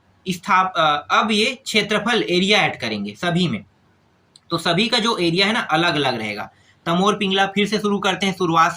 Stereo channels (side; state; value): both; identical; correlation 1.00